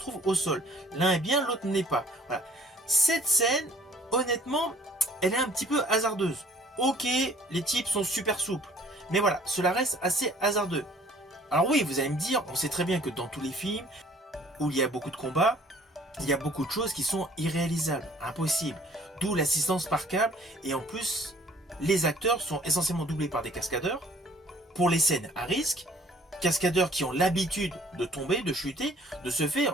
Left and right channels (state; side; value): normal; both; correlation 0.55